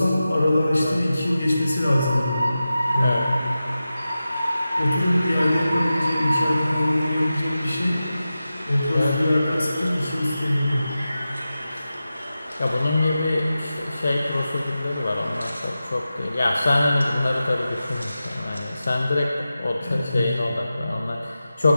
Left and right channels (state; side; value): inverted; both; correlation -0.93